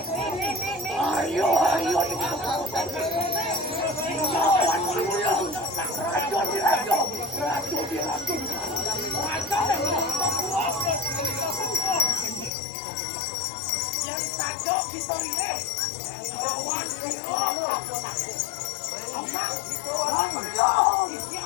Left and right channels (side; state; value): right; drops out; at 12.5 s